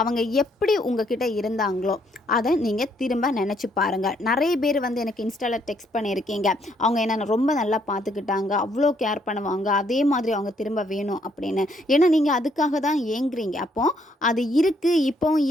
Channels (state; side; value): normal; both; correlation 0.70